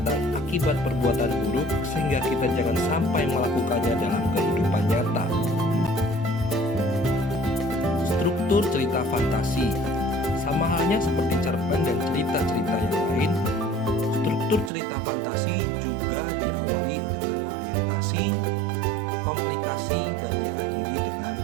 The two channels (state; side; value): drops out; left; at 14.7 s